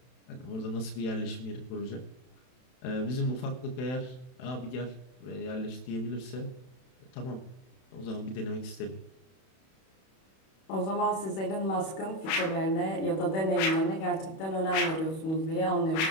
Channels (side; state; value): right; late; 31 ms